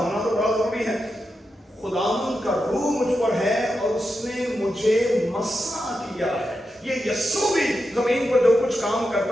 تو بڑا ضروری ہے. خداوند کا روح مجھ پر ہے اور اس نے مجھے مسح کیا ہے. یہ یسوع بھی زمین پر جو کچھ کام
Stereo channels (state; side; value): normal; both; correlation 0.88